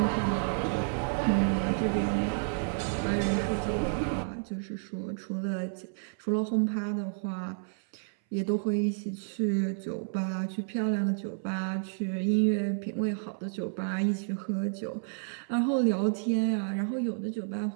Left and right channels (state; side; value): silent; left; 57 dB below the other